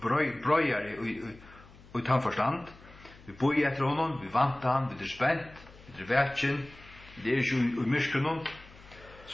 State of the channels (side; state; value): left; noise; hum, 22 dB below the sound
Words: brøyar i tannforstand. Vi boi etter honom, vi vanta han, vi er spent, vi er vetjen, det er ikke i myskrunnen,